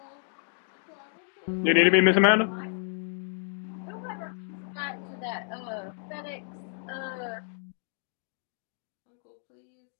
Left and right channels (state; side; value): silent; right; digital silence